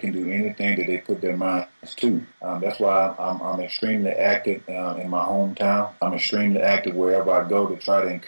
do anything that they put their minds to. That's why I'm extremely active in my hometown. I'm extremely active wherever I go to try to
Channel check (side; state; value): both; inverted; correlation -1.00